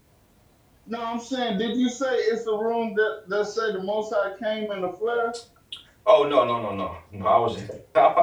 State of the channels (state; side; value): identical; both; correlation 1.00